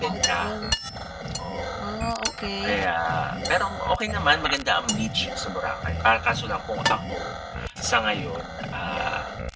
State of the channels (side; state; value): both; identical; correlation 1.00